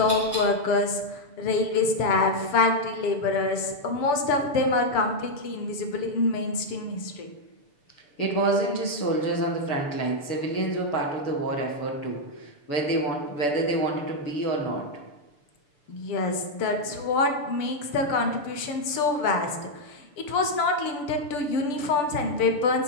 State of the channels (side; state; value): right; late; 6.9 ms